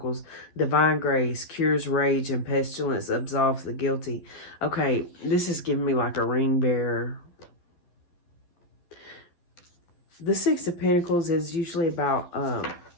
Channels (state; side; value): late; right; 11 ms